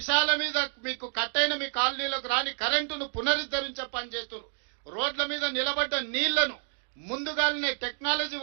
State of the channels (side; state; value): left; silent; digital silence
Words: మీద మీకు కట్టైన మీ కాలనీలకు రాని కరెంటును పునరుద్ధరించే పని చేస్తున్నారు. రోడ్ల మీద నిలబడ్డ నీళ్లను ముందుగానే టెక్నాలజీ